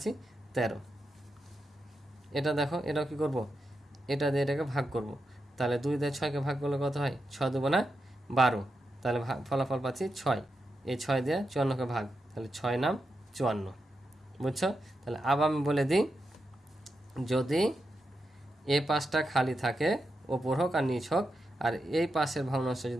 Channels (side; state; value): both; normal; correlation 0.87